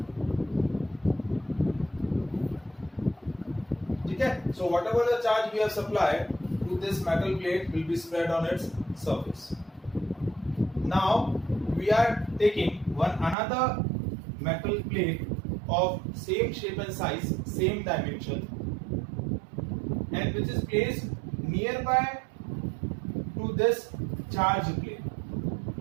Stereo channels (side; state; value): left; drops out; at 13.4 s